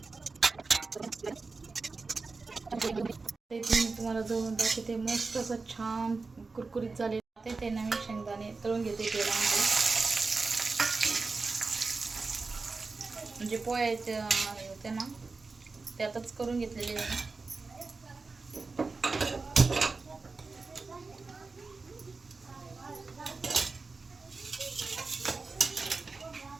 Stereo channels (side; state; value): left; quieter; 4.1 dB